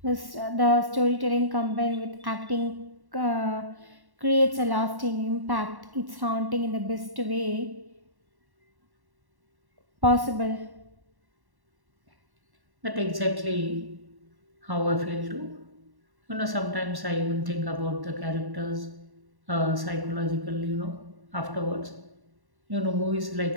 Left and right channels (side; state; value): left; late; 1.1 ms